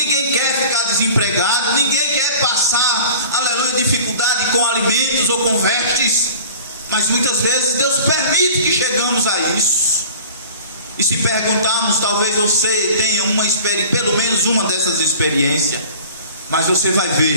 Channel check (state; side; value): inverted; both; correlation -0.44